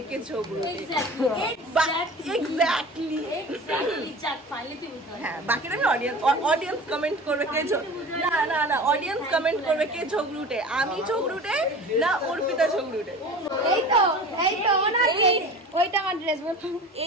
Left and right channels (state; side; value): normal; both; correlation 0.37